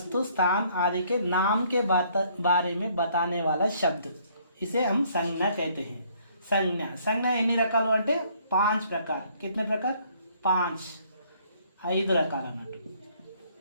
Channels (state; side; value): inverted; both; correlation -0.63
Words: स्थान आदि के नाम के बारे में बताने वाला शब्द इसे हम संज्ञा कहते हैं. संज्ञा ఎన్ని రకాలు అంటే 5 प्रकार. कितने प्रकार? 5 రకాలు అన్నట్టు.